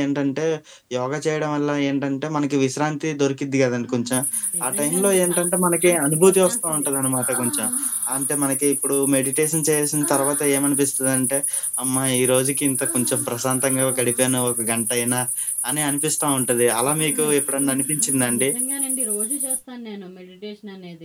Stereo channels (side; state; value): both; identical; correlation 1.00